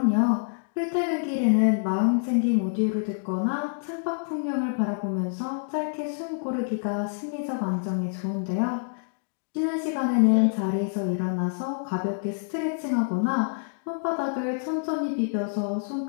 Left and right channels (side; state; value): right; silent; digital silence